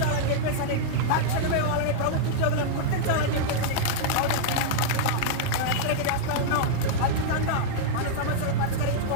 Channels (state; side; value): different; both; correlation -0.01